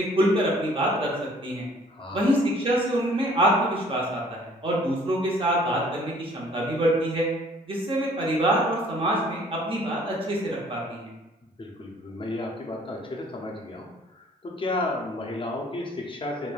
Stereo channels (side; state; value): both; normal; correlation 0.56